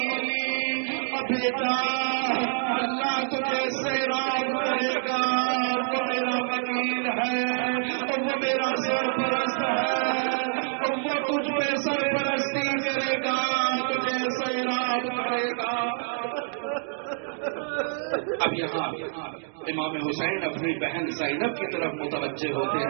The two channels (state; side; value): silent; left; digital silence